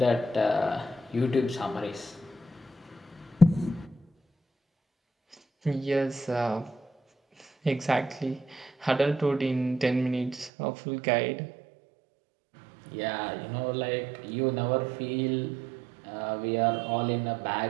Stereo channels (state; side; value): drops out; left; at 10.5 s